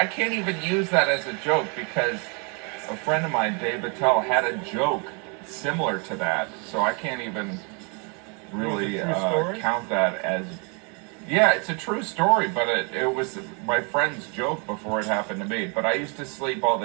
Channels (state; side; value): quieter; left; 35.0 dB